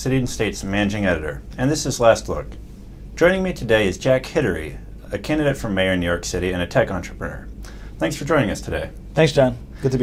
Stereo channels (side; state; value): both; identical; correlation 1.00